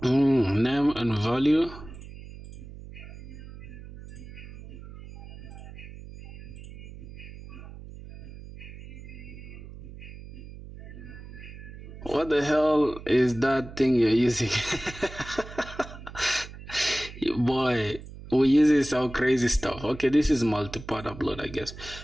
Name and value. What the hell is that thing you're using? Boy, we're using some crazy stuff. Okay, this is multi-part upload, I guess.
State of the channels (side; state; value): right; noise; hum, 14 dB below the sound